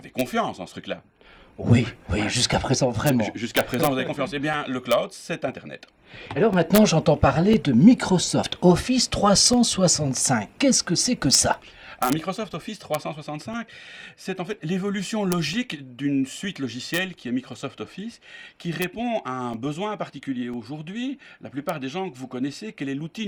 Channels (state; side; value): identical; both; correlation 1.00